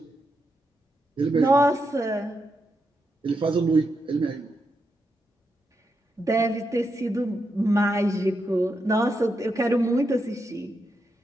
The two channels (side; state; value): both; normal; correlation 0.84